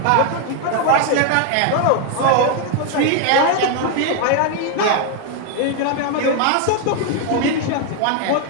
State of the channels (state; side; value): different; both; correlation 0.01